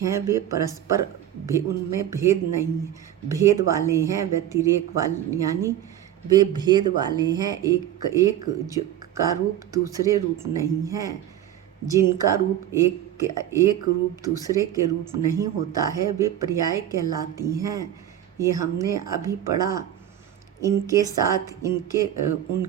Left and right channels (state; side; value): quieter; left; 11.3 dB